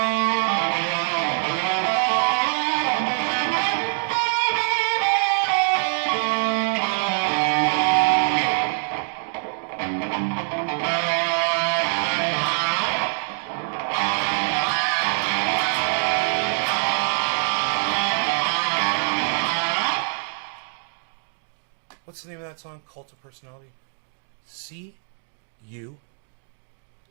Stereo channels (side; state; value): left; silent; digital silence